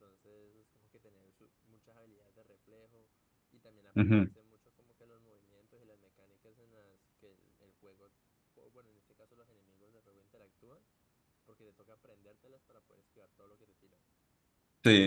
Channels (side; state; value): both; identical; correlation 1.00